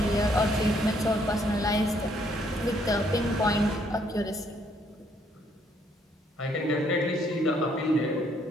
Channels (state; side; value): normal; both; correlation 0.68